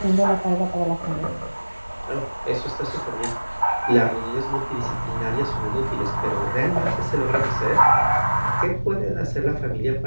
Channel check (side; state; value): both; inverted; correlation -1.00